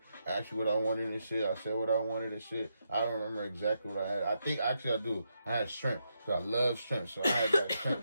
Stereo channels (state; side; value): inverted; both; correlation -0.82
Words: asked me what I wanted and shit. I said what I wanted and shit. I don't remember exactly what I had. I think, actually I do. I had shrimp, because I love shrimp, so I had that